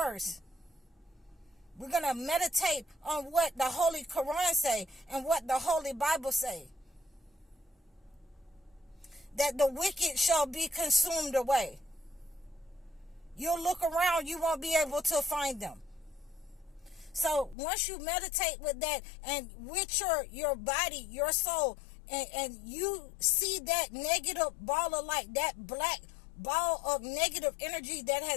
We're going to meditate on what the Holy Quran say and what the Holy Bible say. That the wicked shall be consumed away. You'll look around, you won't be able to find them. So once you meditate with that and with your body, your soul, and you see that negative ball of light, that black ball of negative energy that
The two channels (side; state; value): right; drops out; at 17.6 s